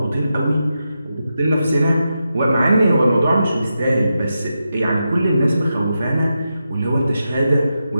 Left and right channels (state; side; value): inverted; both; correlation -0.88